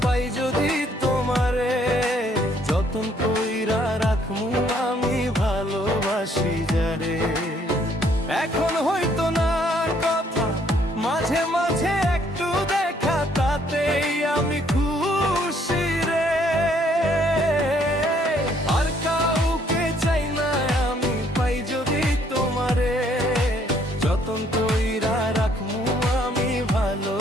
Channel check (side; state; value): both; normal; correlation 0.66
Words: পাই যদি তোমারে, যতন কইরা রাখমু আমি ভালোবাসি যারে। এখন হয়তো না কথা, মাঝে মাঝে একটু দেখা, তাতেই আমি খুশি রে। আর কাউকে চাই না আমি, পাই যদি তোমারে, যতন কইরা রাখমু আমি